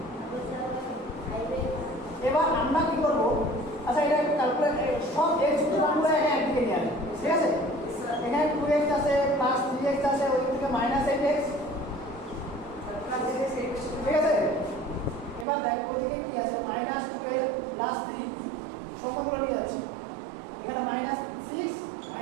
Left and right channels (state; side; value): drops out; left; at 15.5 s